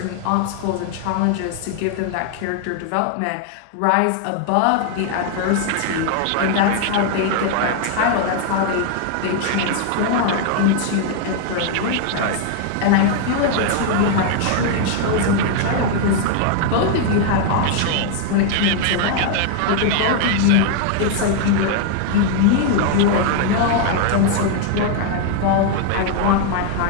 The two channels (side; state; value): both; different; correlation 0.00